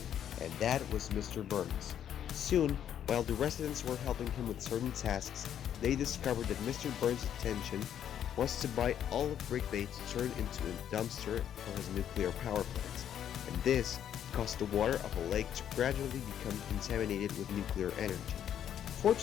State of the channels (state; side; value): quieter; right; 9.8 dB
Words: and that was Mr. Burns. Soon, while the residents were helping him with certain tasks, they discovered that Mr. Burns' intention was to buy all of Brick Bay to turn into a dumpster for his nuclear power plant, and this caused the water of a lake to gradually become contaminated with nuclear energy.